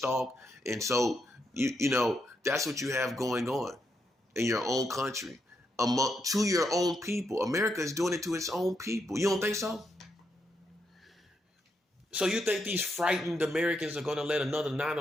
And so, you know, that's what you have going on in your own country. To your own people. America is doing it to its own people. You don't think so? So you think these frightened Americans are going to let another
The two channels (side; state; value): both; normal; correlation 0.80